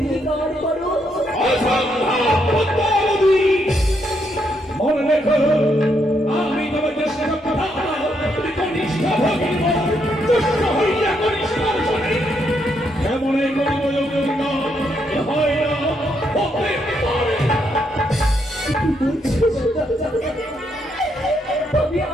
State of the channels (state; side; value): normal; both; correlation 0.77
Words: করো। মনে রেখো আমি তোমার চেষ্টা কনিষ্ঠ হইয়া কনিষ্ঠ এমন হয় না হতে পারে না। কি বলছো দাদা? তবে